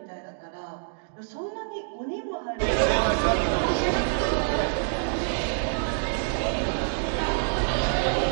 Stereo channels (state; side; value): silent; left; digital silence